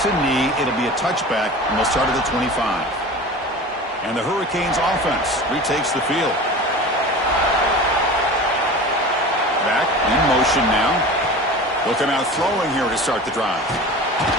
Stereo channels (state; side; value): normal; both; correlation 0.35